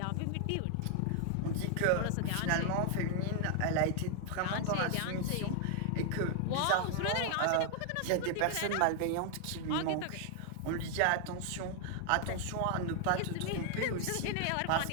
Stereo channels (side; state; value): both; different; correlation 0.00